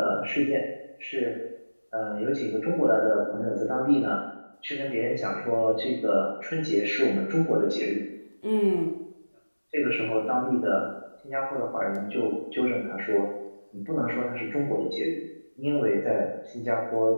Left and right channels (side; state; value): both; inverted; correlation -1.00